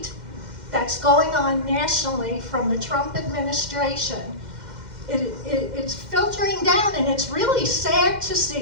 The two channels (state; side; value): late; left; 2.1 ms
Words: that's going on nationally from the Trump administration, it's filtering down, and it's really sad to